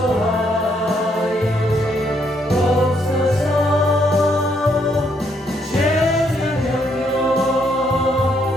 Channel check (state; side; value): normal; both; correlation 0.73